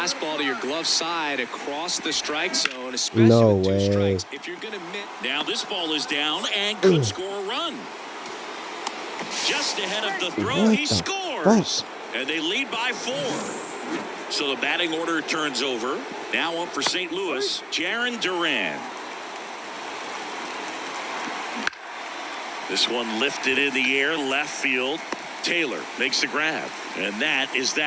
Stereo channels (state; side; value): identical; both; correlation 1.00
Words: to your glove side across the strike zone, especially with 2 strikes, if you're going to miss. Now this ball is down and could score a run. Just ahead of the throw, he scores. And they lead by 4. So the batting order turns over. Now up for St. Louis, Jarren Duran. This one lifted in the air, left field. Taylor makes the grab. And that is